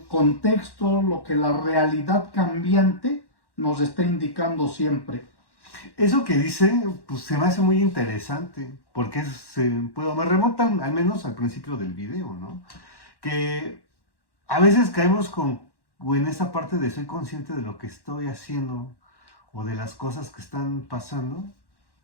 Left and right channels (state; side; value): late; right; 1.1 ms